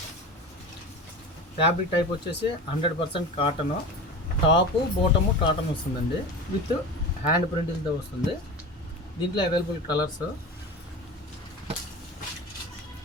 ఫ్యాబ్రిక్ టైప్ వచ్చేసి 100% కాటను. టాపు బాటము కాటన్ వస్తుందండి, విత్ హ్యాండ్ ప్రింటింగ్తో వస్తుంది. దీంట్లో అవైలబుల్ కలర్స్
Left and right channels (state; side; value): normal; both; correlation 0.30